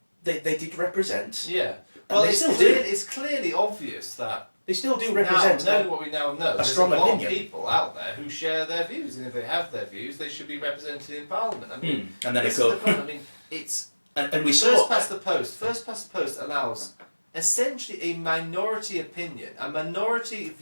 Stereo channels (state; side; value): inverted; both; correlation -1.00